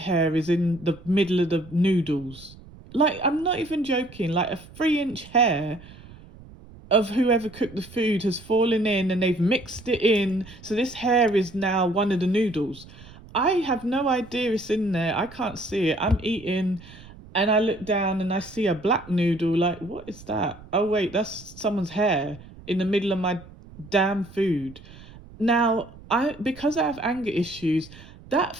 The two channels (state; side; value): noise; right; rumble, 20 dB below the sound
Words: is in the middle of the noodles. Like, I'm not even joking, like a 3 inch hair of whoever cooked the food has fallen in, and they've mixed it in. So this hair is now one of the noodles. I have no idea it's in there. I can't see it. I'm eating and I look down and I see a black noodle. Like, what is that? Oh, wait, that's someone's hair in the middle of my damn food. Now, because I have anger issues, that